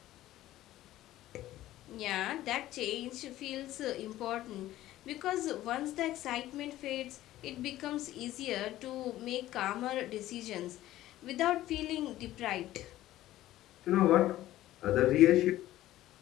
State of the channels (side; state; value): right; quieter; 14.7 dB